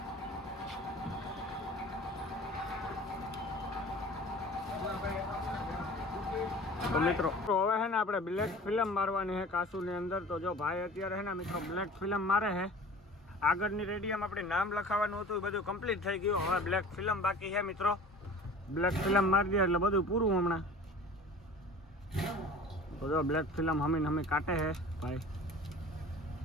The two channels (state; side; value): normal; both; correlation 0.42